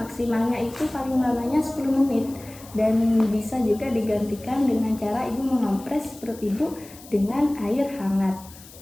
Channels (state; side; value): noise; left; hiss, 20 dB below the sound